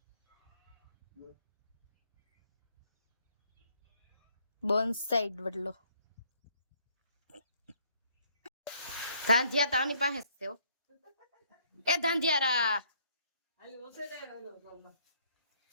બોનસાઈડ વડલો ધાંધિયા તાની પાસે જ છે. એ ધાંધિયારા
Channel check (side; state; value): both; inverted; correlation -0.65